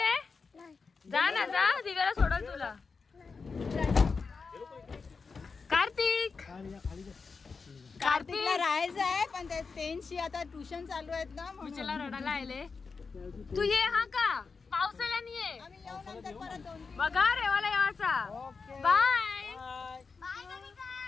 जा ना जा. दिव्याला सोडल तुला. कार्तिक कार्तिकला राहायचं आहे पण ते टेन्शी आता ट्युशन चालू आहेत ना विचारला रडायला आले. तू ये हा का पावसाला नाही ये. आम्ही येऊ नंतर परत 2-3 बघा रेवाला यावाचा. बाय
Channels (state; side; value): quieter; right; 4.8 dB